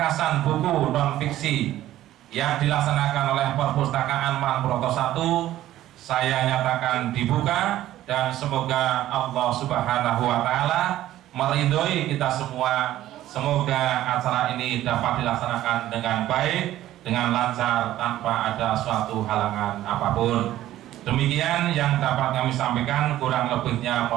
buku non-fiksi yang dilaksanakan oleh Perpustakaan Purwokerto 1 saya nyatakan dibuka, dan semoga Allah Subhanahu wa Ta'ala meridhoi kita semua. Semoga acara ini dapat dilaksanakan dengan baik, dengan lancar, tanpa ada suatu halangan apapun. Demikian yang dapat kami sampaikan, kurang lebihnya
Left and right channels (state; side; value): quieter; left; 13.9 dB